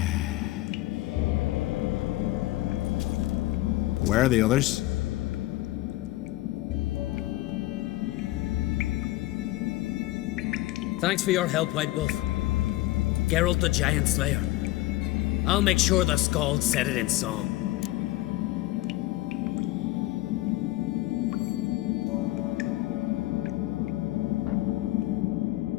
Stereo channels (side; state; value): right; quieter; 17.7 dB